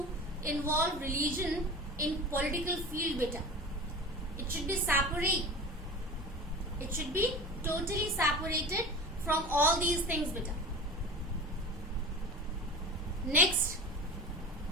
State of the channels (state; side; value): normal; both; correlation 0.34